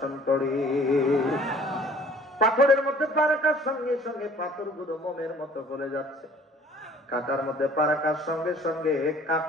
করে। পাথরের মধ্যে পা রাখার সঙ্গে সঙ্গে পাথরগুলো মোমের মতো গলে যাচ্ছে, কাটার মধ্যে পা রাখার সঙ্গে সঙ্গে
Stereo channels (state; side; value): normal; both; correlation 0.53